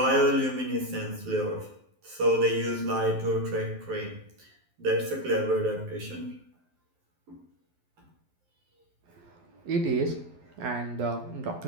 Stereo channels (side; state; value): left; late; 12 ms